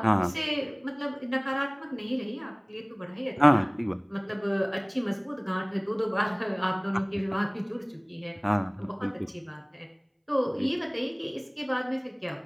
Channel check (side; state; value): both; identical; correlation 1.00